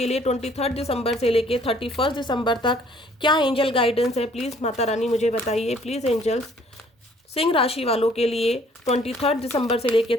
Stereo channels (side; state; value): both; normal; correlation 0.59